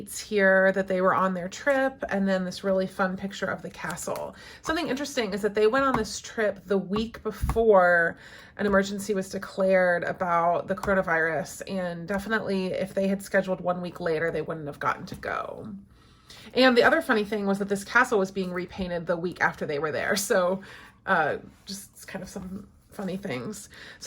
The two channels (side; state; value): both; identical; correlation 1.00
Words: here that they were on their trip, and then this really fun picture of the castle. Something interesting is that they went on this trip the week before an emergency was declared about the coronavirus, and definitely if they had scheduled 1 week later, they wouldn't have gotten to go. And the other funny thing was that this castle was being repainted the week after they were there. So just kind of some funny things.